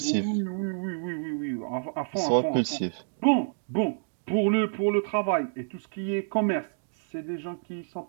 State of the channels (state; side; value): silent; left; digital silence